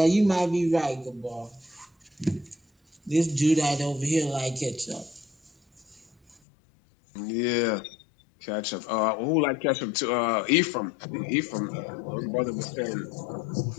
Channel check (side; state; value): right; drops out; at 6.4 s